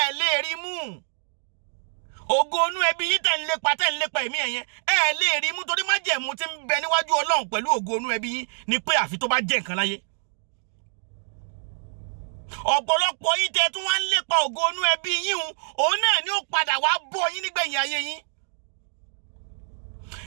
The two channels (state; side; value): silent; left; digital silence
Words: lè rí mú. Ògo inú ẹbí yín tẹ̀ ń lépa ẹ̀mí ẹ̀yẹn, ẹ̀ lè rí mú, torí májẹ̀mú tí ń bẹ níwájú Ọlọ́run pẹ̀lú ògo inú ẹbí yín ni pé àfi tó bá jẹ́ nǹkan láyé. Ọ̀pọ̀lọpọ̀ yín tẹ́ tún wá ń lépa ògo inú ẹbí yín, òun náà ni ó padà wá bọ́ yín nígbẹ̀yìn ayé yín.